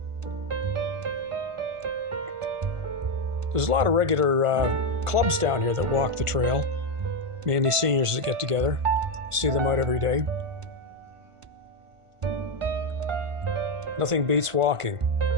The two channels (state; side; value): late; left; 1.5 ms